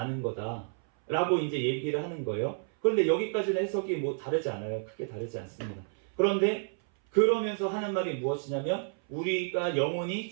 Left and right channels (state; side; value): silent; left; 58 dB below the other